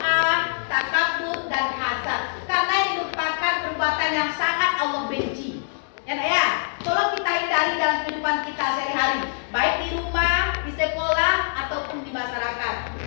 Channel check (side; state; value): right; silent; 63 dB below the other